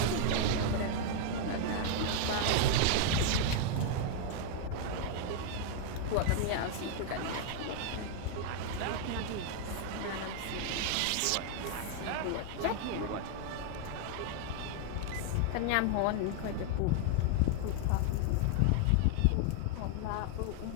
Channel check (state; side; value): different; both; correlation 0.00